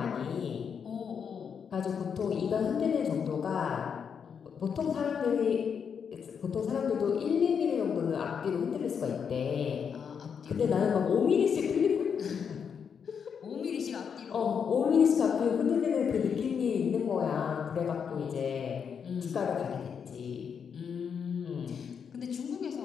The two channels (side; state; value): right; quieter; 6.9 dB